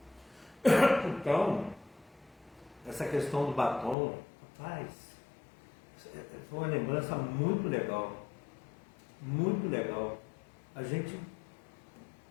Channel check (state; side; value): drops out; right; at 4.0 s